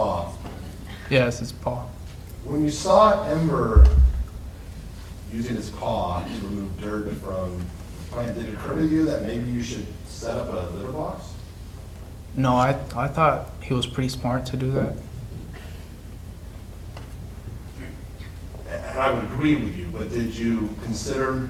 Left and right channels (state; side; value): identical; both; correlation 1.00